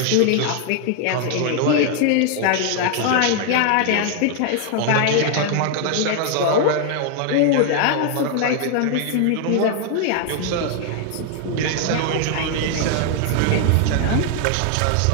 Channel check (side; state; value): both; different; correlation 0.00